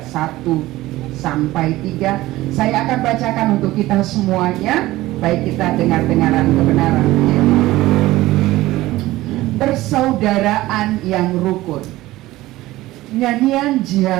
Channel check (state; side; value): quieter; left; 17.3 dB